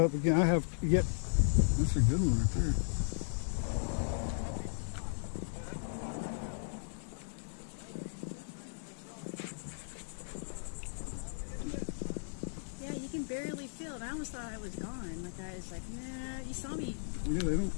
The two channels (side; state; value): right; silent; digital silence